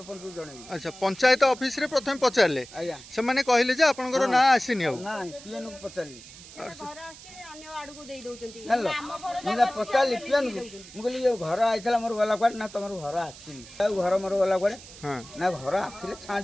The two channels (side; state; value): right; noise; hiss, 18 dB below the sound